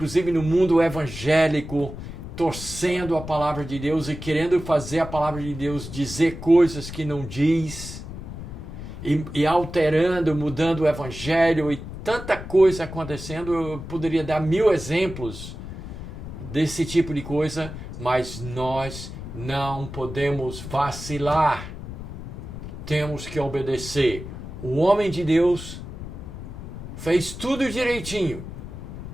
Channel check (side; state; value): left; noise; rumble, 10 dB below the sound